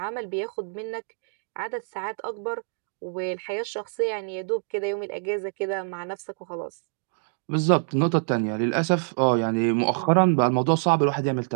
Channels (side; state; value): left; silent; digital silence